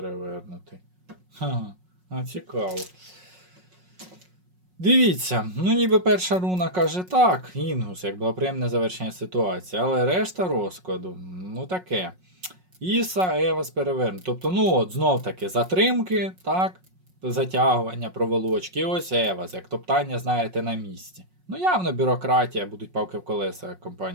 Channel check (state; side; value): late; left; 5.5 ms